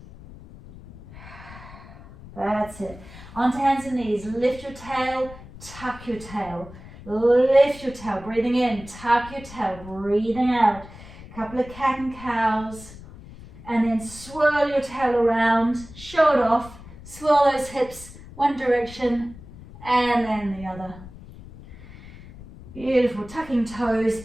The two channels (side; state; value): left; noise; rumble, 17 dB below the sound